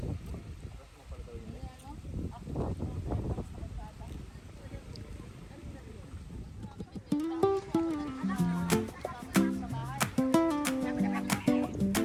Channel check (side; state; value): both; identical; correlation 1.00